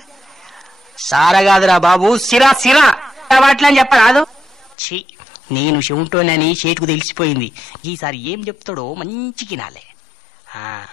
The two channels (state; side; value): drops out; right; at 4.8 s